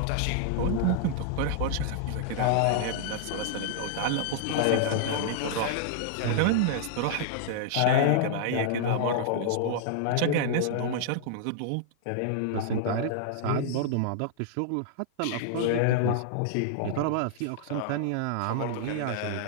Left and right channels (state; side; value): different; both; correlation -0.01